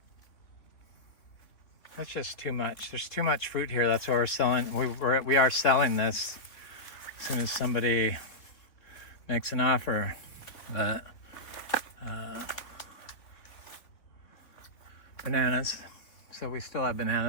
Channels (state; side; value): late; right; 3.4 ms